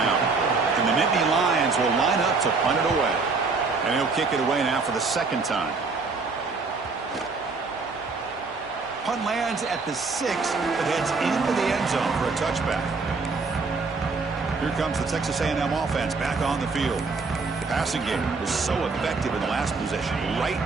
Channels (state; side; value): quieter; left; 4.3 dB